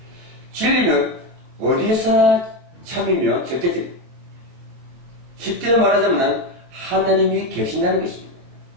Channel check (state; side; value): late; left; 22 ms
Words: 진리는 어디서나 참이며 절대적입니다. 쉽게 말하자면 하나님이 계신다는 것입니다.